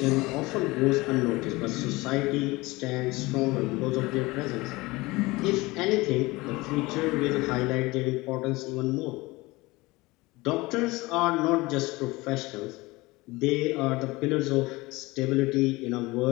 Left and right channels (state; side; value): quieter; right; 21.7 dB